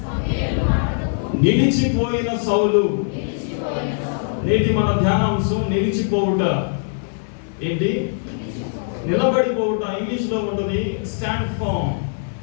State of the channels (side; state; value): right; silent; 65 dB below the other